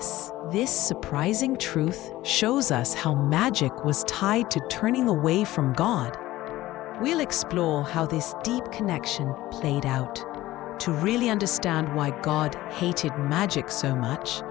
This surprising truth shows us how magic was tied to turning away from God. We'll explore how this deep connection played out. To really understand why God hated magic so much,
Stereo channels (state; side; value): quieter; right; 16.5 dB